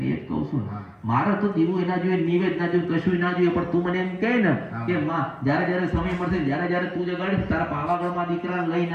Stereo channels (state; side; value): identical; both; correlation 1.00